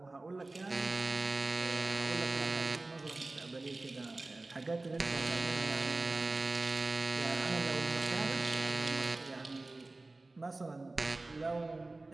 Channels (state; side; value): quieter; left; 3.1 dB